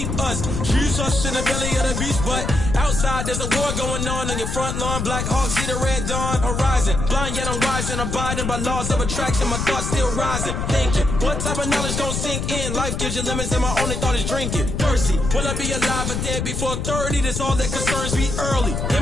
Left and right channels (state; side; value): noise; left; rumble, 2 dB below the sound